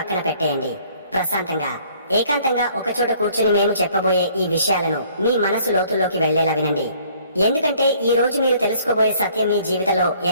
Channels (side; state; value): both; inverted; correlation -0.59